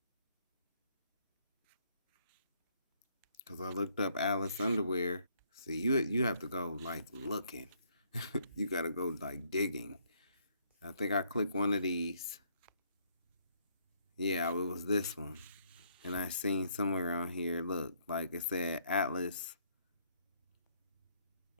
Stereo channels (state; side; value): inverted; both; correlation -0.69